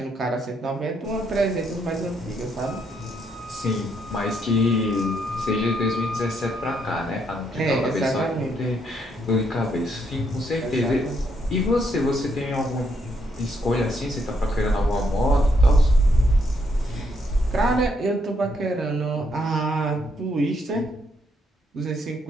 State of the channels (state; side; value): normal; both; correlation 0.75